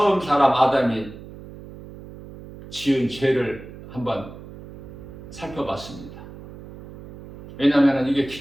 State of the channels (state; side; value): noise; right; hum, 16 dB below the sound